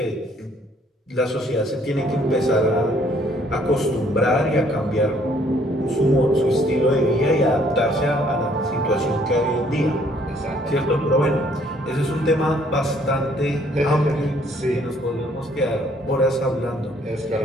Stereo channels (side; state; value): both; normal; correlation 0.63